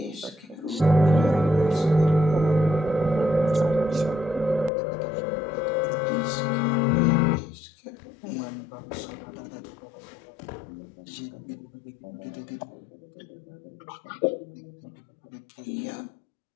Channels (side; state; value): right; drops out; at 4.7 s